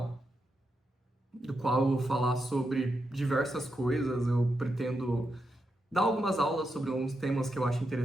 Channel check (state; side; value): normal; both; correlation 0.85